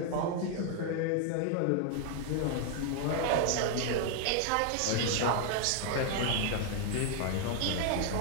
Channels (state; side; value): different; both; correlation 0.00